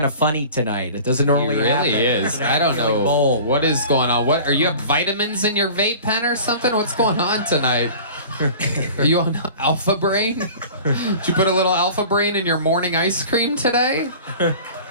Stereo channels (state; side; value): inverted; both; correlation -0.41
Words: of funny tonight. It doesn't He normally happen. really is. You know, I don't you're like know bold. what is going on. What are you have vitamins in your vape pen or something? What's going on tonight? Are you on Alpha Brain? Did you put a little Alpha Brain in your morning ice cream today?